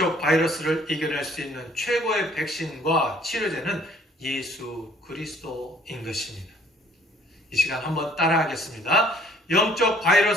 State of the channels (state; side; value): normal; both; correlation 0.58